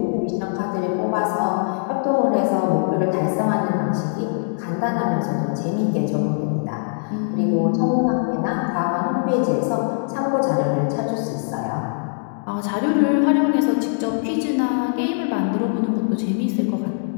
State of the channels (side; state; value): right; silent; digital silence